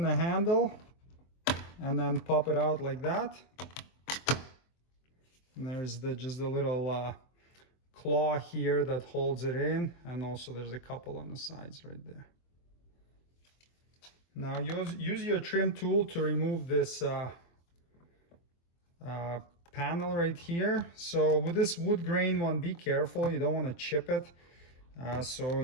handle, and then pop it out like that. And there's just a little claw here that holds it in, and also there's a couple on the sides right there. Now use your trim tool to remove this panel right here. So with this wood grain one, be careful, you don't want to chip it. So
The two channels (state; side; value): late; right; 24 ms